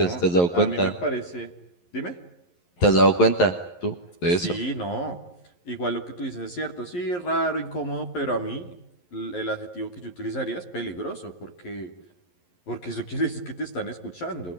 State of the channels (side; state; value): right; late; 11 ms